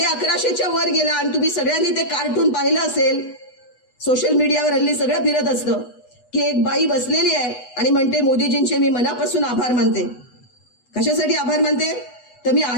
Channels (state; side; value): late; right; 8.1 ms